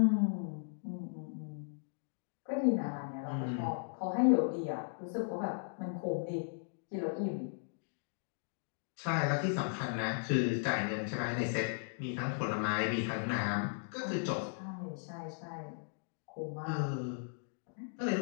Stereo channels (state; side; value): silent; right; digital silence